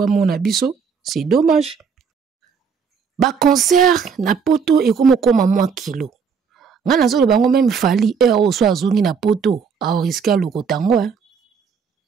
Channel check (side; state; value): left; quieter; 6.1 dB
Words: mona biso, c'est dommage. Ba concert na poto et comme moi kilo. Nga nazo le bango même fali heure o so azongi na poto a risquer lokotango hein.